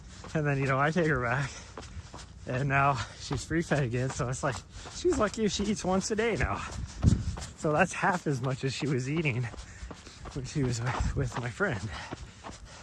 and then, you know, I take her back, and now she's free fed again. So it's like, she's lucky if she eats once a day now. So that's half as much as she was eating when she was with my friend.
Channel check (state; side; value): identical; both; correlation 1.00